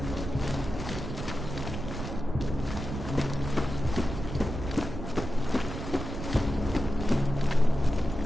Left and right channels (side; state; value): right; noise; rumble, 7 dB below the sound